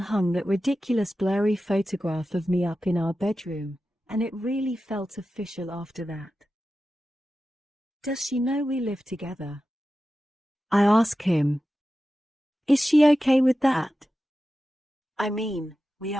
that ridiculous blurry photograph of me up in our bedroom, and it really felt official after that. Does she know we live together? I ask him. Is she okay with that? I mean, we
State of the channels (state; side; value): normal; both; correlation 0.93